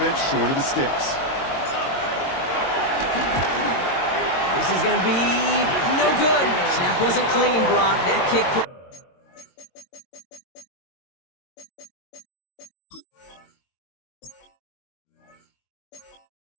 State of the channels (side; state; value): right; late; 22 ms